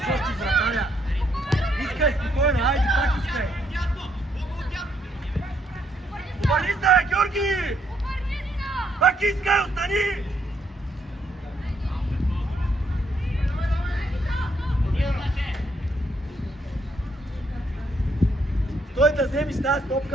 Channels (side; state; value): both; normal; correlation 0.73